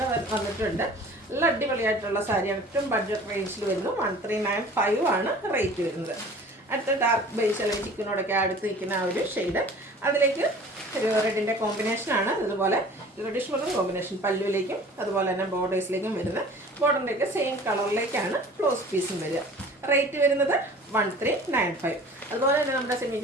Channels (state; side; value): normal; both; correlation 0.45